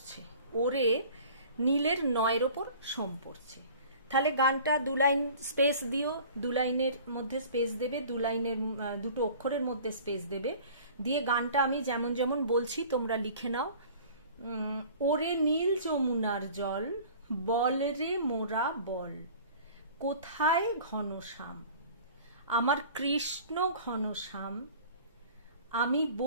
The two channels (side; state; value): both; inverted; correlation -0.45